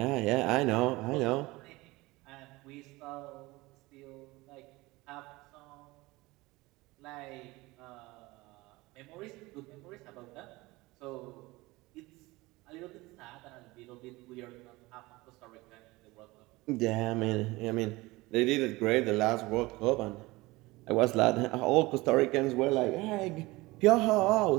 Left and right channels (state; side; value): quieter; left; 21.3 dB